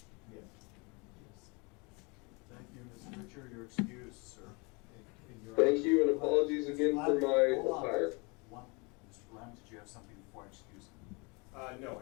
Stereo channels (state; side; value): quieter; right; 29.4 dB